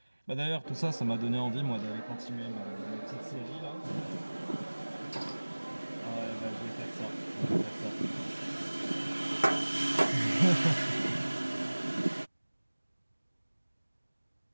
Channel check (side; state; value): both; inverted; correlation -1.00